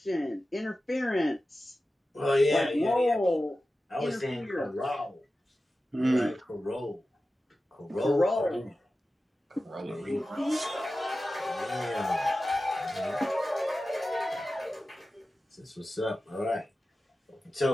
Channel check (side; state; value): both; normal; correlation 0.94